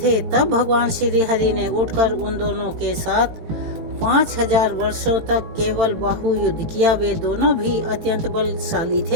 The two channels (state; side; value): late; left; 18 ms